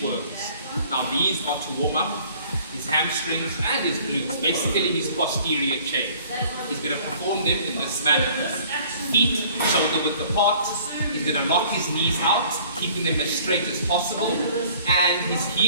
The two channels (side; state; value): both; inverted; correlation -0.54